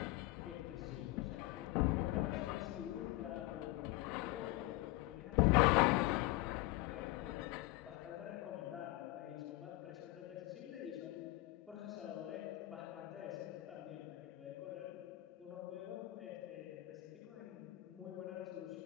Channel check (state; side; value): quieter; right; 18.9 dB